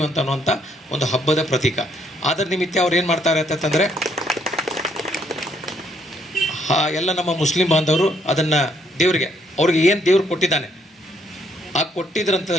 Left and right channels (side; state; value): both; normal; correlation 0.69